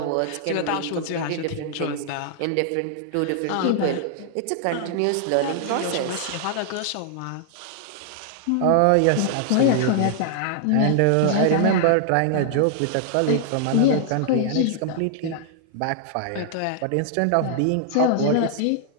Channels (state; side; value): different; both; correlation 0.00